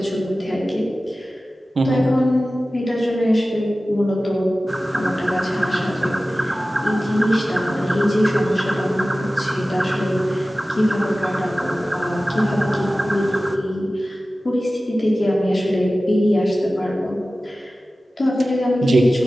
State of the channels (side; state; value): both; normal; correlation 0.96